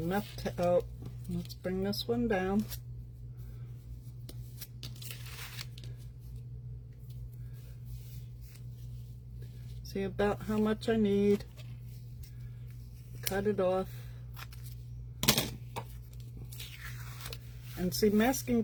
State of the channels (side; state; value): both; identical; correlation 1.00